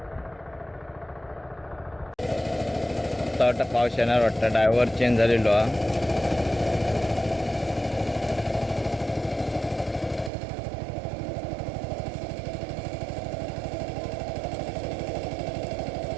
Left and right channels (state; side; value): drops out; left; at 10.3 s